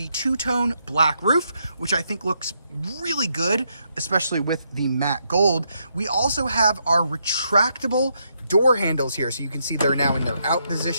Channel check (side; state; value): both; inverted; correlation -0.78